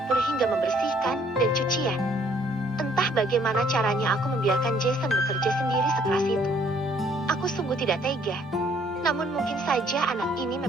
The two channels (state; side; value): normal; both; correlation 0.63